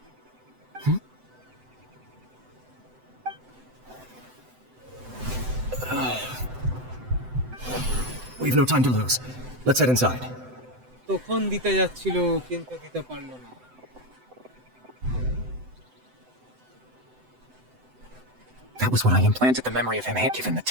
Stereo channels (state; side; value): late; left; 7.9 ms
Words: We've no time to lose. Let's head inside. তখন দিতে যাচ্ছিল কিন্তু দিতে পারলো না। That was what I implanted the memory of him. Given the